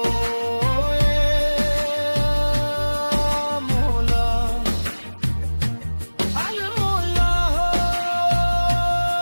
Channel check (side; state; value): both; inverted; correlation -1.00